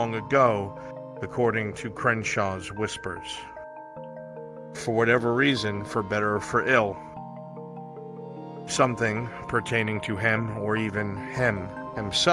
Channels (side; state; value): both; identical; correlation 1.00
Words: ago, according to Crenshaw's whispers. For whatever reason, for better or for ill, something pertaining to him or even him